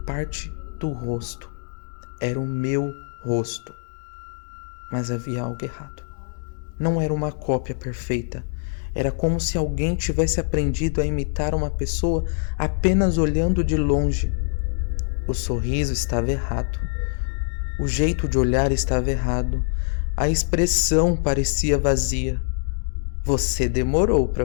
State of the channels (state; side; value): silent; right; digital silence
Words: parte do rosto. Era o meu rosto. Mas havia algo errado. Não era uma cópia perfeita. Era como se alguém tivesse aprendido a imitar uma pessoa apenas olhando de longe. O sorriso estava errado. O jeito de olhar estava errado. A expressão parecia vazia. Você demorou